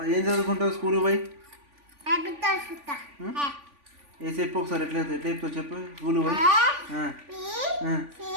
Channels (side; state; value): left; late; 3.5 ms